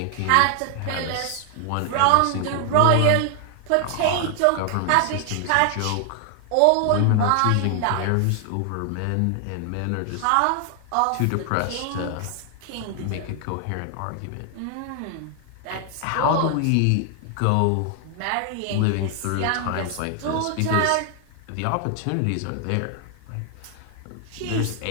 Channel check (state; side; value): different; both; correlation 0.00